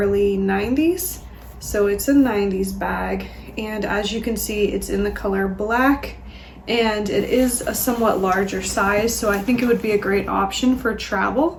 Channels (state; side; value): identical; both; correlation 1.00